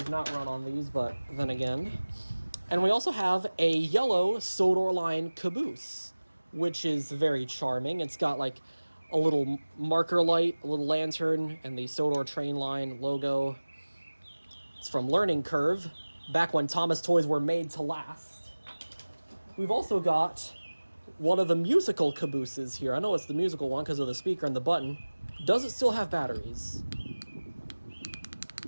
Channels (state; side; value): inverted; both; correlation -1.00